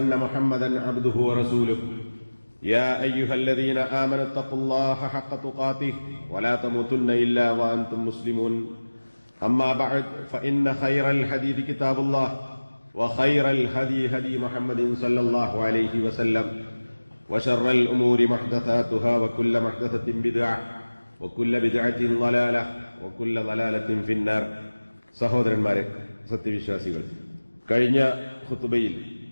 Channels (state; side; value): inverted; both; correlation -1.00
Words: محمدا عبده ورسوله يا أيها الذين آمنوا اتقوا الله حق تقاته ولا تموتن إلا وأنتم مسلمون أما بعد فإن خير الحديث كتاب الله وخير الهدي هدي محمد صلى الله عليه وسلم وشر الأمور محدثاتها وكل محدثة بدعة وكل بدعة ضلالة وكل ضلالة في النار. സഹോദരന്മാരെ, സത്യവിശ്വാസികൾ, കഴിഞ്ഞ ഖുതുബയിൽ